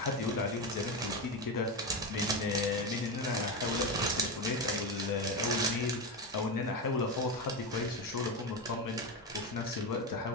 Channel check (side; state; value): both; normal; correlation 0.15